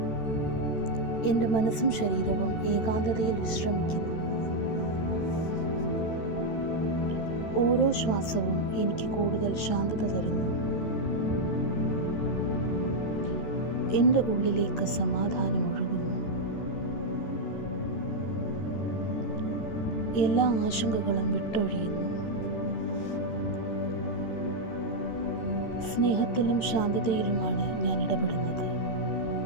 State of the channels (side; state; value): right; late; 14 ms